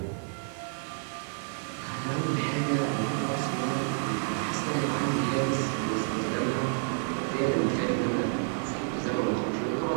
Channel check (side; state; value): left; silent; 58 dB below the other